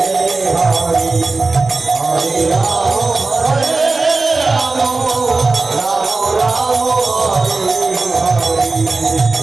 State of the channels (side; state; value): left; quieter; 3.6 dB